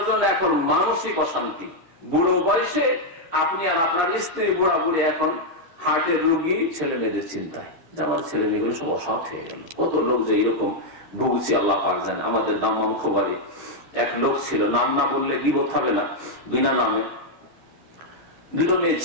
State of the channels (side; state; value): left; late; 12 ms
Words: জন্য এখন মানসিক অশান্তি, বুড়ো বয়সে আপনি আর আপনার স্ত্রী বুড়া বুড়ে এখন হার্টের রোগী, ছেলে মেয়েদের চিন্তায় যে আমার ছেলে মেয়েগুলো সব অসৎ হয়ে গেল। কত লোক যে এরকম ভুগছি আল্লাহ পাক জানে। আমাদের দাম্মাম খোবারে এক লোক ছিল, নাম না বললে গিবত হবে না, বিনা নামে, দুটো মেয়ে